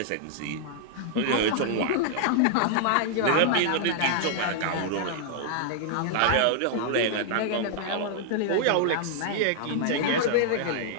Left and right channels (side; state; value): both; different; correlation -0.01